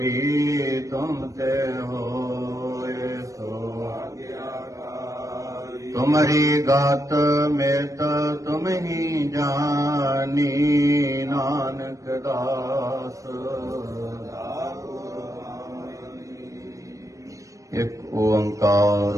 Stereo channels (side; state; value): left; late; 0.16 ms